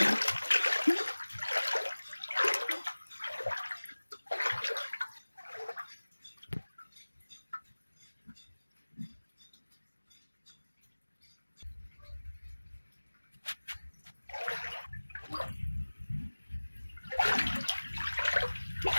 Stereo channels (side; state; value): both; inverted; correlation -1.00